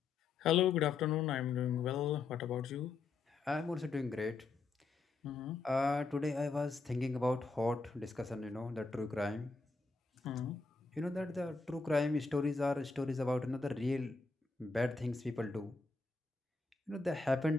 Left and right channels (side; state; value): right; quieter; 4.1 dB